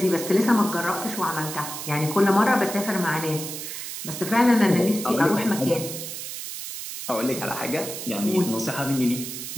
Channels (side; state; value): right; noise; hiss, 8 dB below the sound